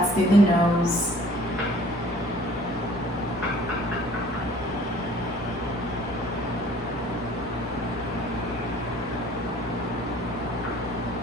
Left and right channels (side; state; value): both; normal; correlation 0.52